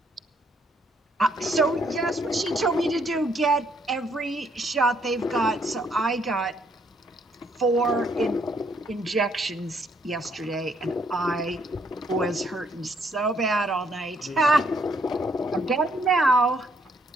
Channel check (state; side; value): normal; both; correlation 0.69